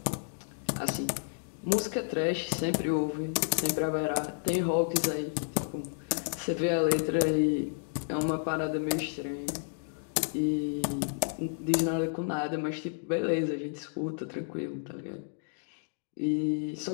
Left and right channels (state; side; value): silent; right; digital silence